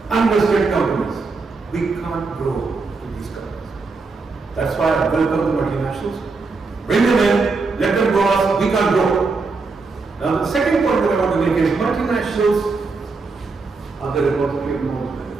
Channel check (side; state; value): left; quieter; 4.1 dB